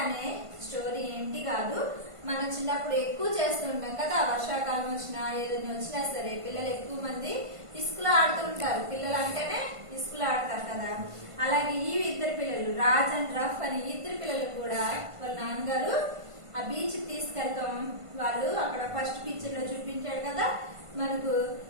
అనే స్టోరీ ఏంటి కాదు, మనం చిన్నప్పుడు ఎక్కువ చేస్తూ ఉంటాం కదా. వర్షాకాలం వచ్చినా ఏదైనా వచ్చినా సరే పిల్లలు ఎక్కువ మంది ఇసుకలో ఆడుతూ ఉంటారు. పిల్లలు అంటేనే ఇసుకలో ఆడతారు కదా. అలాగే ఈ ఇద్దరు పిల్లలు రాజ్ అండ్ రఫ్ అని ఇద్దరు పిల్లలు కూడా వాళ్ళ నాన్నగారు ఆ బీచ్ తీసుకెళ్తాం. వాళ్ళు అక్కడ ఫస్ట్ పిక్చర్ లో చూపించాడు కదా మనకు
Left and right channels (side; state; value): left; late; 1.5 ms